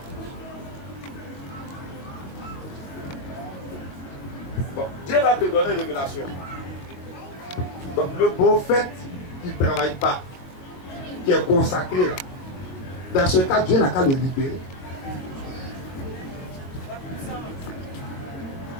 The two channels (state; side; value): late; right; 22 ms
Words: Bon, Dieu va te donner une révélation. Donc, le prophète qui ne travaille pas, qui est consacré là, dans ce cas, Dieu n'a qu'à le libérer.